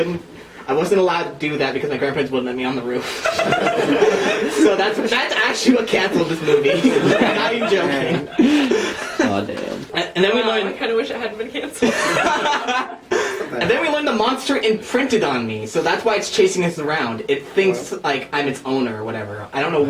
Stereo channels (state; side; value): identical; both; correlation 1.00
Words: wasn't allowed to do that because my grandparents wouldn't let me on the roof. So that's actually what canceled this movie. I'm not even joking. Oh damn. And then we Wow, I learned. kind of wish it hadn't been canceled. And then we learned the monster imprinted on me, so that's why it's chasing us around. It thinks like I'm its owner or whatever. I don't know